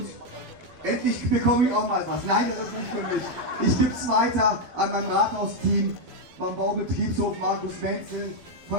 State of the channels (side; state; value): left; late; 12 ms